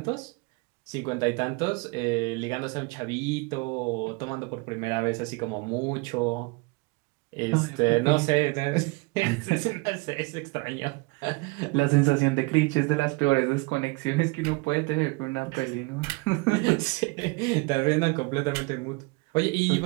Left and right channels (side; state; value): left; quieter; 26.6 dB